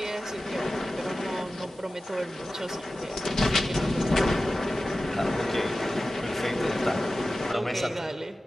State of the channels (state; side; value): normal; both; correlation 0.94